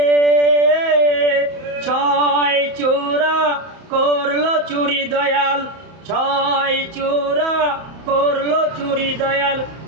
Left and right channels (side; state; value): left; late; 31 ms